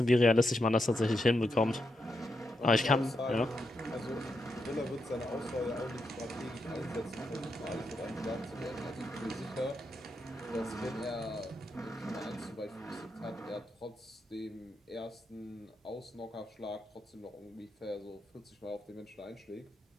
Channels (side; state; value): both; normal; correlation 0.83